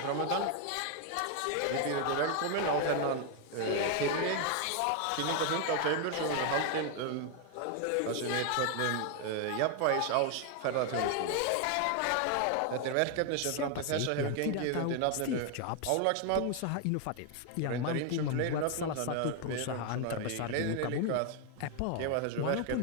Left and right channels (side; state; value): both; different; correlation 0.00